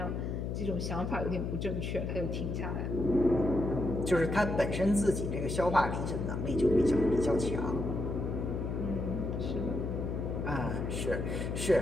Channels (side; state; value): left; noise; hum, 2 dB below the sound